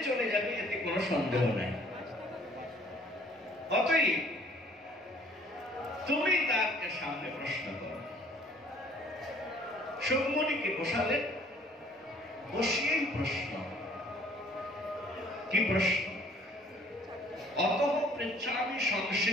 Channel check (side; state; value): both; normal; correlation 0.57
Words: চলে যাবে, এতে কোনো সন্দেহ নাই। অতএব তুমি তাকে সামনে প্রশ্ন করো। সুকমণিকে বসালেন, বসিয়েই প্রশ্ন। কি প্রশ্ন? অতঃ পৃচ্ছামি